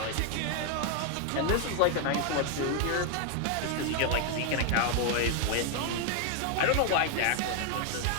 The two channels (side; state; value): both; different; correlation 0.00